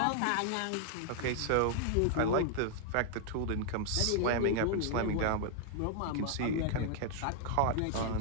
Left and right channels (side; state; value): both; different; correlation 0.00